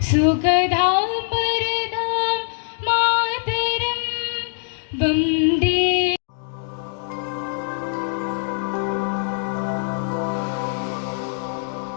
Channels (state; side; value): silent; right; digital silence